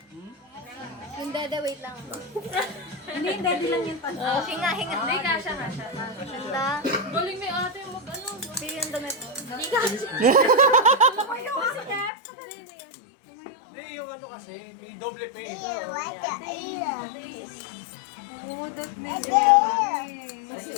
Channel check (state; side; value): drops out; right; at 12.1 s